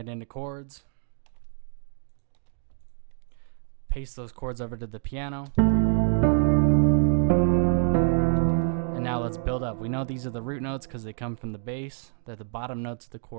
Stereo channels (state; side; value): silent; left; digital silence